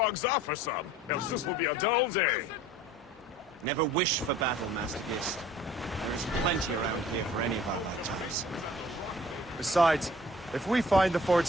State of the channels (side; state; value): both; normal; correlation 0.50